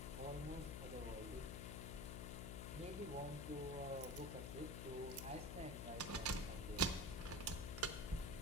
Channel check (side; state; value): left; noise; hum, 3 dB below the sound